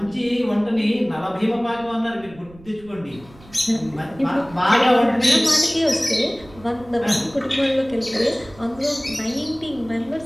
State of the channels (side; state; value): right; noise; rumble, 22 dB below the sound